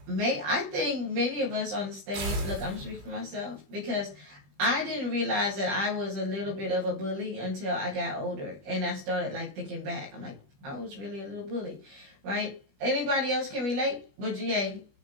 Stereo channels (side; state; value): left; late; 21 ms